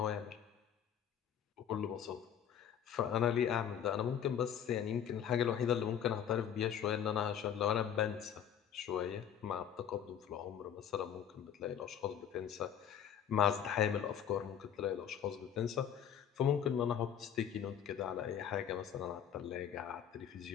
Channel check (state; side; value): quieter; right; 9.0 dB